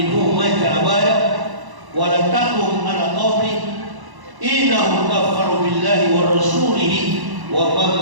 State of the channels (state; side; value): late; left; 1.0 ms